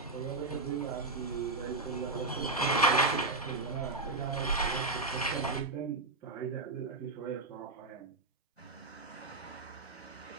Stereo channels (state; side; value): quieter; left; 3.3 dB